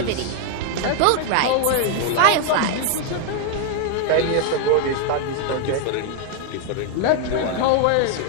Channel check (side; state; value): both; different; correlation 0.00